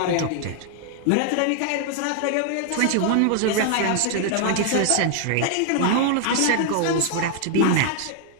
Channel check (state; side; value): different; both; correlation 0.00